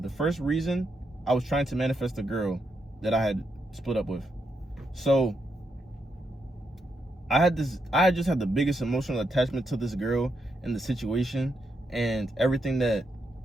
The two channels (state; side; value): normal; both; correlation 0.81